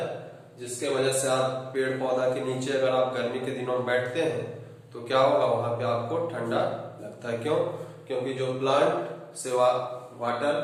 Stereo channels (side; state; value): both; identical; correlation 1.00